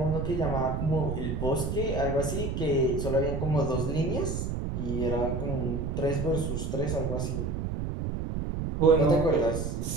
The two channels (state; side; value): noise; right; rumble, 2 dB below the sound